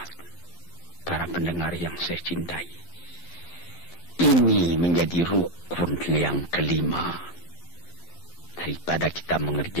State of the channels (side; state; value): right; late; 12 ms